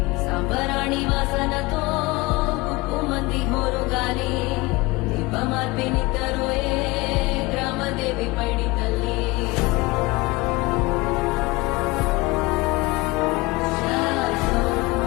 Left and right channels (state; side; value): quieter; right; 22.6 dB